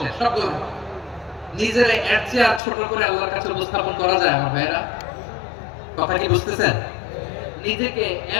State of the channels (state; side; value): drops out; right; at 2.6 s